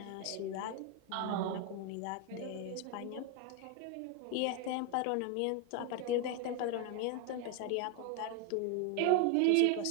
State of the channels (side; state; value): both; different; correlation 0.01